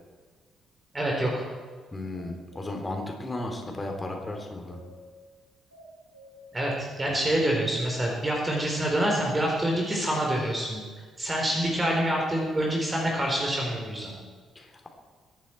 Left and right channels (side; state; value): both; normal; correlation 0.82